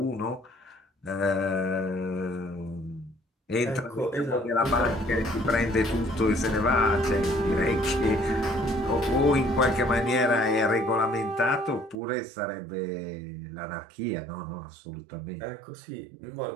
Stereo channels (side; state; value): left; drops out; at 12.0 s